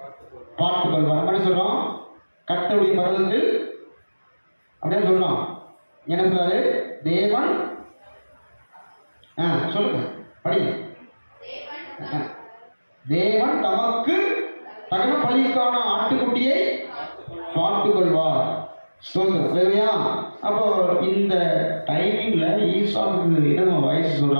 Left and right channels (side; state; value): both; inverted; correlation -1.00